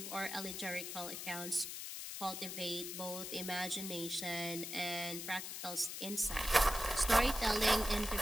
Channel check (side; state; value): left; noise; hiss, 6 dB below the sound